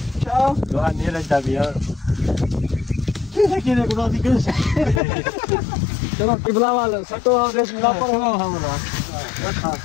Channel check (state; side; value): drops out; right; at 5.0 s